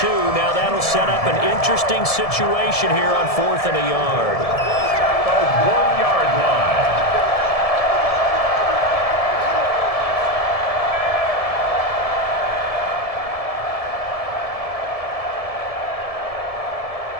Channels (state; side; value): late; right; 1.7 ms